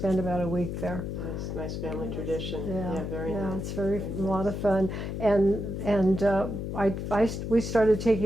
about a week there. Nice family tradition. Yeah, very nice. It's a lot of fun, and we started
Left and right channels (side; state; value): left; noise; hum, 4 dB below the sound